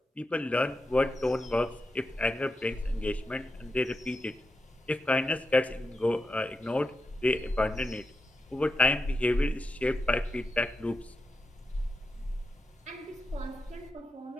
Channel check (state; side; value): normal; both; correlation 0.87